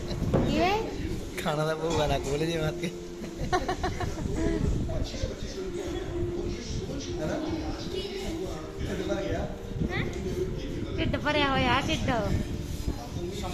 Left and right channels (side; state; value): both; identical; correlation 1.00